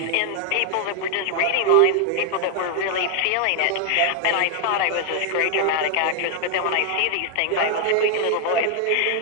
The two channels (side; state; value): both; different; correlation 0.00